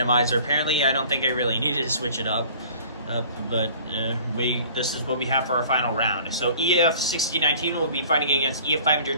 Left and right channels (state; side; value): inverted; both; correlation -0.48